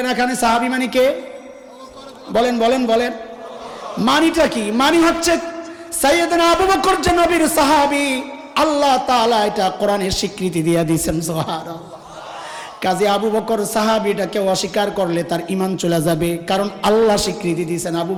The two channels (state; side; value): identical; both; correlation 1.00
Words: এখানে সাহাবী মানে কে? বলেন বলেন বলেন, মানিটা কি? মানি হচ্ছে সাইয়েদনা আবু বকর যে নবীর সাহাবী, আল্লাহ তাআলা এটা কোরআনে স্বীকৃতি দিয়ে দিয়েছেন, সুবহানাল্লাহ। কাজে আবু বকর সাহাবীটাকে অস্বীকার করলে তার ঈমান চলে যাবে, কারণ আল্লাহ স্বীকৃতি দিয়েছেন আবু